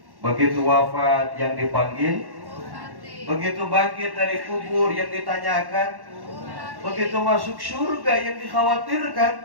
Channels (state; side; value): late; left; 1.1 ms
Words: begitu wafat yang dipanggil, begitu bangkit dari kubur yang ditanyakan, begitu masuk surga yang